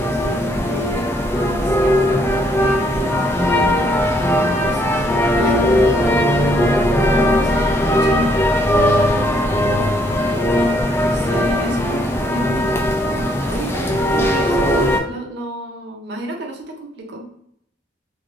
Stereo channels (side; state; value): both; normal; correlation 0.69